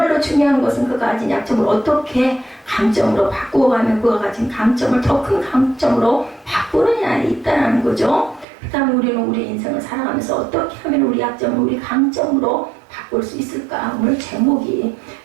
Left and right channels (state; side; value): drops out; left; at 8.5 s